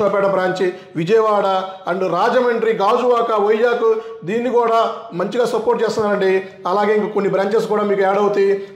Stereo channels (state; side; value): identical; both; correlation 1.00